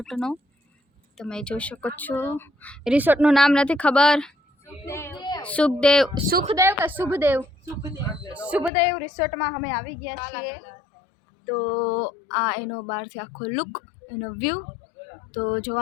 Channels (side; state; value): right; drops out; at 8.7 s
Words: તમે જોઈ શકો છો રિસોર્ટનું નામ નથી ખબર સુખદેવ કે શુભદેવ રિસોર્ટમાં અમે આવી ગયા છીએ તો આ એનો બહારથી આખો લુક એનો વ્યૂ તો